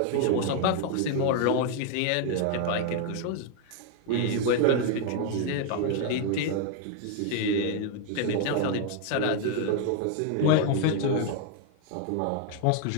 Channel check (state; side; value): different; both; correlation 0.00